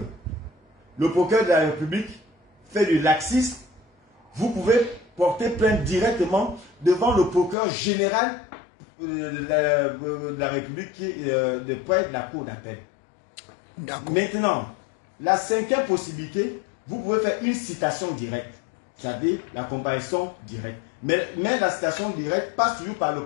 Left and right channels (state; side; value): drops out; right; at 7.6 s